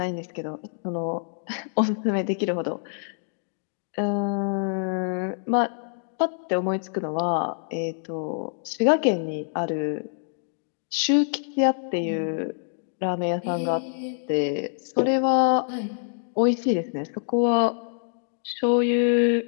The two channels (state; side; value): silent; right; digital silence